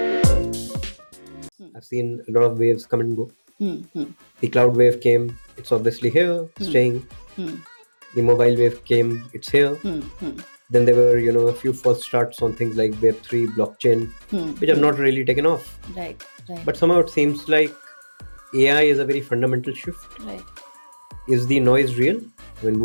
I've seen a lot of waves come and go. The cloud wave came, it's obviously here, staying. The mobile wave came, it's here. Then there were, a few false starts on things like Web3, blockchain, which have not really taken off. Right. But somehow it seems like AI is a very fundamental shift. Right. Is the noise real? I mean,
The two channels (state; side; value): inverted; both; correlation -1.00